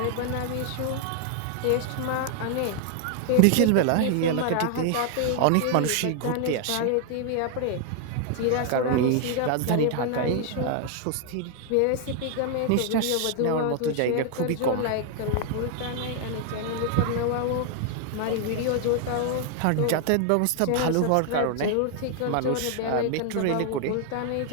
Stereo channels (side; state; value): both; different; correlation 0.00